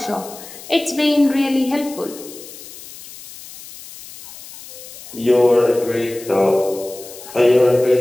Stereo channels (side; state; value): left; noise; hiss, 16 dB below the sound